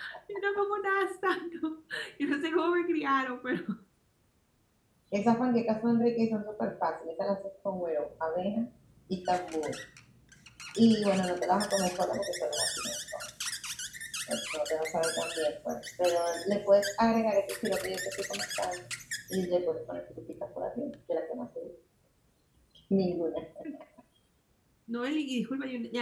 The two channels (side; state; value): both; identical; correlation 1.00